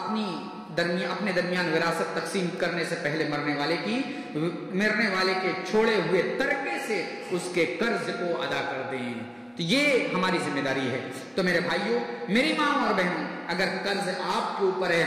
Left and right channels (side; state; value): both; identical; correlation 1.00